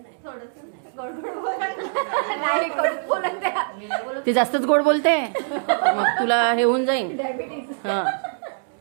ती जास्तच गोड बोलते, मग तुला हे होऊन जाईन. हा.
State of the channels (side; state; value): left; silent; digital silence